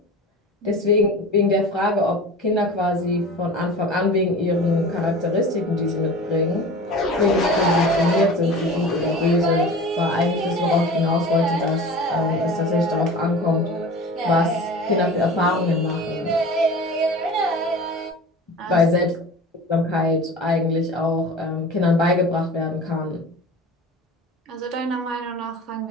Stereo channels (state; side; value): normal; both; correlation 0.37